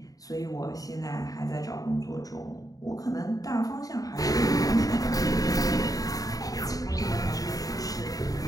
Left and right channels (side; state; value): right; late; 0.18 ms